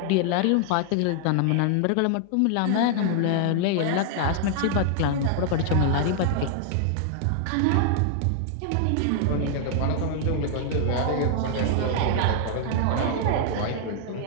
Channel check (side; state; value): both; different; correlation 0.00